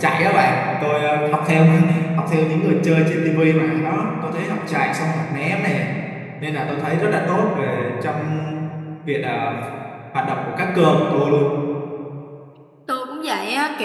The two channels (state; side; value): identical; both; correlation 1.00